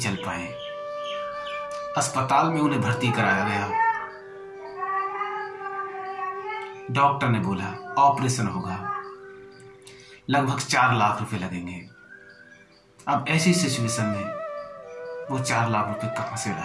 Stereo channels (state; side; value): identical; both; correlation 1.00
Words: पाए। अस्पताल में उन्हें भर्ती कराया गया। डॉक्टर ने बोला ऑपरेशन होगा, लगभग 4 लाख रुपए लगेंगे। अब ऐसी सिचुएशन में वो 4 लाख रुपए कहां से